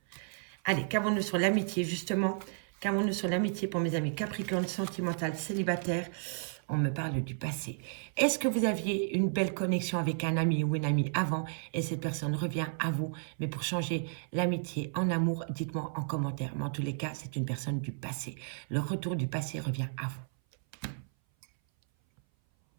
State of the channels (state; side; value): silent; left; 56 dB below the other